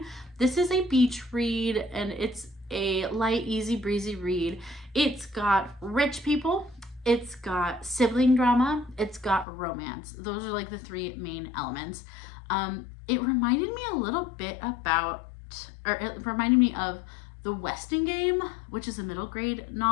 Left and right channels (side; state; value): right; drops out; at 9.5 s